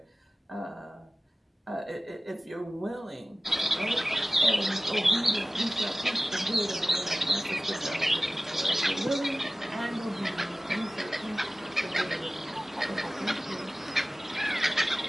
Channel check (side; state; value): both; normal; correlation 0.97